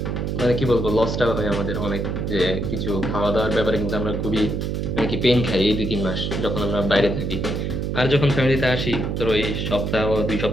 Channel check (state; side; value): noise; right; hum, 1 dB below the sound